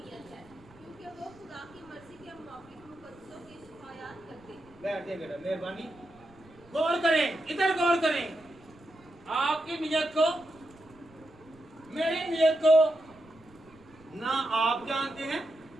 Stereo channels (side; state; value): right; noise; rumble, 26 dB below the sound